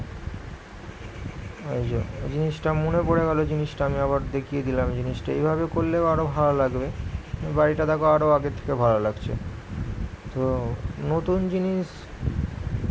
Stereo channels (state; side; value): identical; both; correlation 1.00